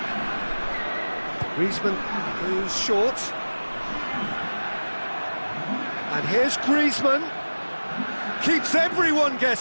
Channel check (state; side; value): inverted; both; correlation -1.00